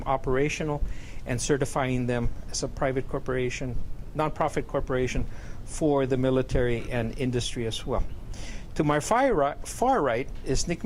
operational, and certifying them as a private corporation, nonprofit corporation for the military and industry as well. To my far right is Nick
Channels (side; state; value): both; identical; correlation 1.00